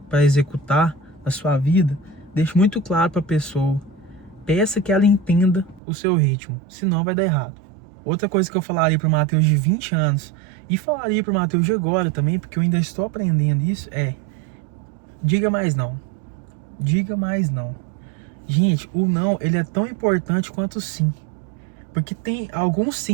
para executar na sua vida, deixe muito claro para a pessoa. Peça que ela entenda o seu ritmo, senão vai dar errado. Outra coisa que eu falaria para o Matheus de 20 anos, e falaria para o Matheus de agora também, porque eu ainda estou aprendendo isso, é: diga mais não. Diga mais não. Gente, o não, ele é tão importante quanto o sim. Porque tem alguns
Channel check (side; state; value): left; drops out; at 5.8 s